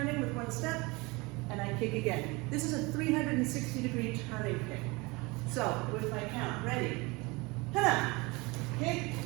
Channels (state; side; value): quieter; left; 25.3 dB